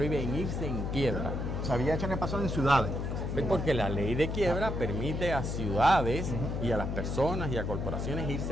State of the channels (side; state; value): left; noise; hum, 2 dB below the sound